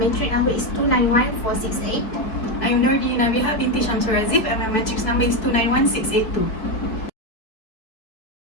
number is 291468. I'm Nordi Nabiha binti Shamsul Razif and my matrix number is 291682.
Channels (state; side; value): late; right; 4.8 ms